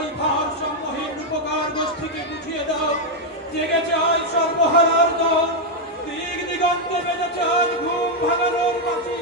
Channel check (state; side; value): normal; both; correlation 0.01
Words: ভার সমূহীন উপকার গোষ্ঠীকে বুঝিয়ে দাও জেগেছে আজ সর্বহারার দল দিক দিগন্তে বেজেছে আজ ঘুম ভাঙানোর বাঁচি